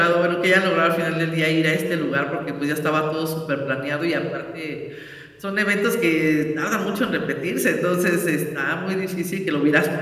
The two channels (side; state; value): both; identical; correlation 1.00